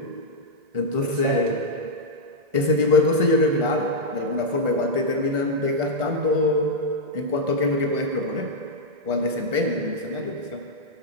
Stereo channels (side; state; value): left; late; 1.4 ms